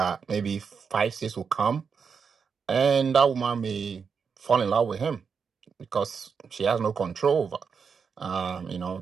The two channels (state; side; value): quieter; left; 6.0 dB